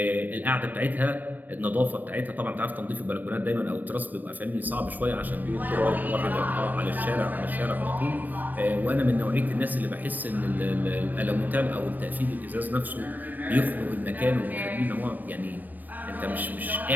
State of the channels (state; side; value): late; left; 0.087 ms